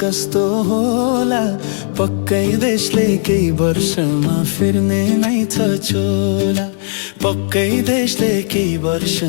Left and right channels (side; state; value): right; silent; digital silence